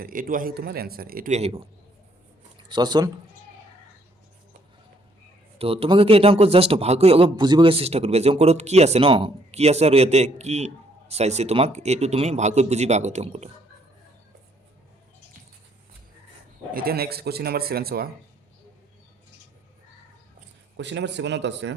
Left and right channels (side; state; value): both; normal; correlation 0.67